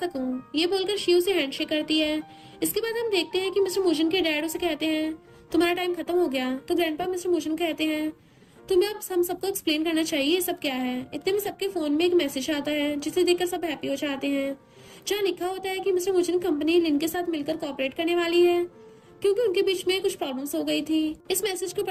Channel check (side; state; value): both; identical; correlation 1.00